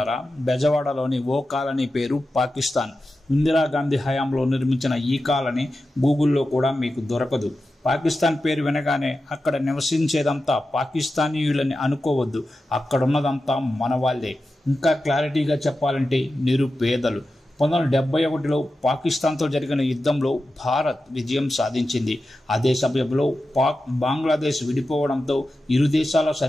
బెజవాడలోని ఓ కాలనీ పేరు పాకిస్తాన్. ఇందిరాగాంధీ హయాంలో నిర్మించిన ఈ కాలనీ గూగుల్లో కూడా మీకు దొరకదు. పాకిస్తాన్ పేరు వినగానే అక్కడ నివసించేదంతా పాకిస్తానీయులని అనుకోవద్దు. అక్కడున్నదంతా మన వాళ్ళే. ఇంకా క్లారిటీగా చెప్పాలంటే నిరుపేదలు. 1971లో పాకిస్తాన్తో జరిగిన యుద్ధంలో భారత్ విజయం సాధించింది. అదే సమయంలో బంగ్లాదేశ్ విడిపోవడంతో ఇరు దేశాల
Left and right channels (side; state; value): both; normal; correlation 0.92